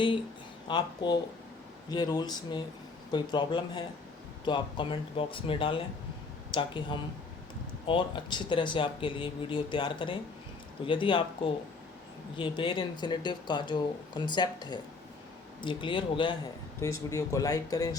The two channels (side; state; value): right; quieter; 4.1 dB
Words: आपको ये रूल्स में कोई प्रॉब्लम है तो आप कमेंट बॉक्स में डालें ताकि हम और अच्छी तरह से आपके लिए वीडियो तैयार करें। तो यदि आपको ये बेयर इन्फिनेटिव का जो कंसेप्ट है ये क्लियर हो गया है तो इस वीडियो को लाइक करें,